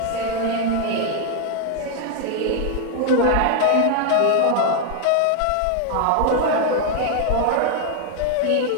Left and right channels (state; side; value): different; both; correlation 0.00